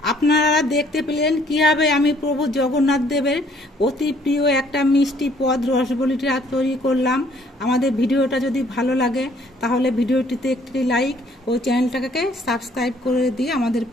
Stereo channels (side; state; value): both; normal; correlation 0.62